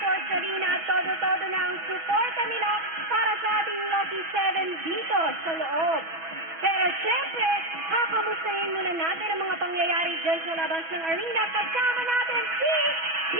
Arena at todo-todo na ang suporta nila para sa ating Lucky 7 dito sa loob. Pero siyempre, kakamustahin muna natin ang mga pangyayari dyan sa labas ng arena. Kasama natin si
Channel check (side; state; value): left; late; 6.1 ms